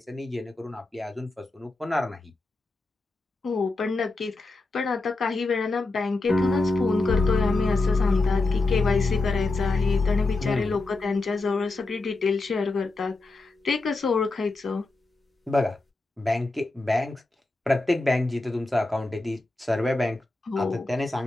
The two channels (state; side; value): quieter; right; 3.2 dB